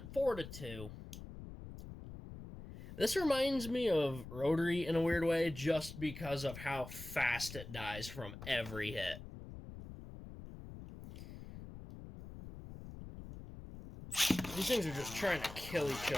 4-2. This reminds me of Rotary in a weird way, just because of how fast it dies from every hit. These things are just trying to kill each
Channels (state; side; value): noise; left; rumble, 12 dB below the sound